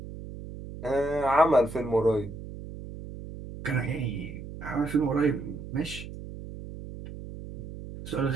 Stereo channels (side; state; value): right; noise; hum, 11 dB below the sound